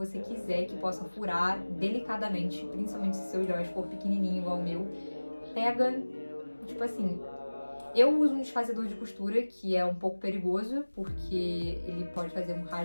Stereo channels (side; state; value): both; inverted; correlation -1.00